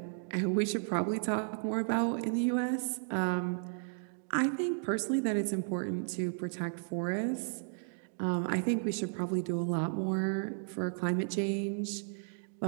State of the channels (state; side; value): silent; left; digital silence